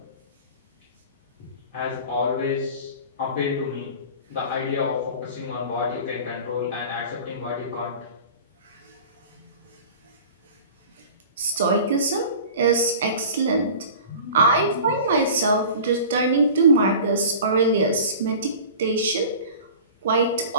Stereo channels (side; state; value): both; inverted; correlation -0.40